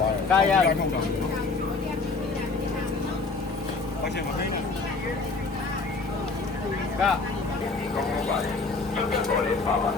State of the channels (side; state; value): right; quieter; 4.0 dB